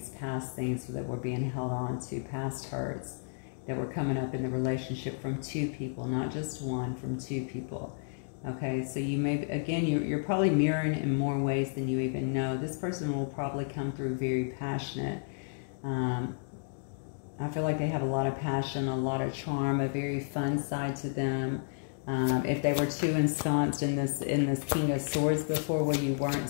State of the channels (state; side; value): silent; right; digital silence